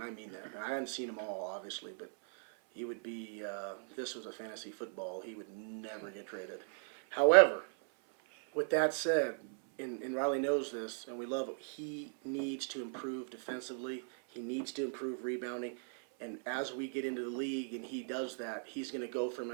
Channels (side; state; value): left; silent; 53 dB below the other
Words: I mean that. I haven't seen them all, obviously, but he would be, if this was a fantasy football, he would never get traded. However, with that said, and Riley knows this, and we love him, he needs to improve defensively. He needs to improve rebounding. And as we get into the league and he does that, he's going to go from